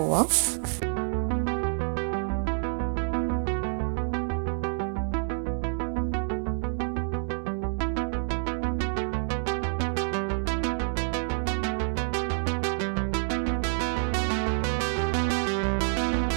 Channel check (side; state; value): left; silent; 59 dB below the other